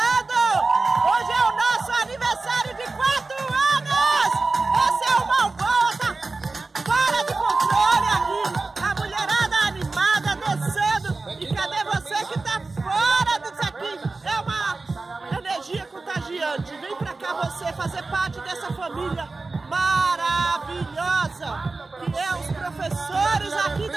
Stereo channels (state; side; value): quieter; left; 3.6 dB